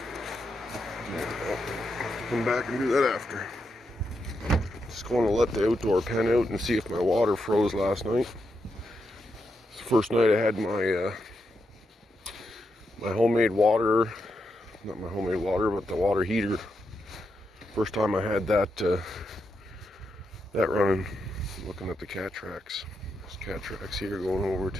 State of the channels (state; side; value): normal; both; correlation 0.84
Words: Come back and do that after. Just going to let the outdoor pen out and see if my water froze last night. It's the first night I had my my homemade water, not my homemade water, but the water heater. First time I had that that running. Looking at the cat tracks. There's cat tracks here going over